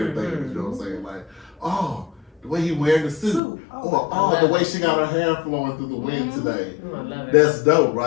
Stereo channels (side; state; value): right; drops out; at 3.4 s